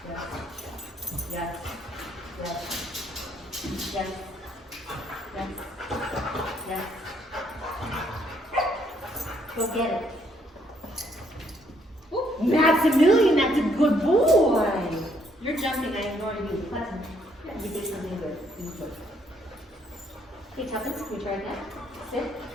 Yes. Yes. Yes. Yes. Yes. Yes. Yes. Go get it. Ooh, Maximilian, that's a good boy. You're jumping, I ignore you. Button. You did something good. You good. Okay, Tuppence, can we try again? Sit.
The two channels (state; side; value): normal; both; correlation 0.69